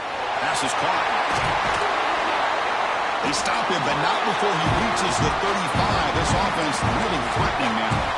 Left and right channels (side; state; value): both; identical; correlation 1.00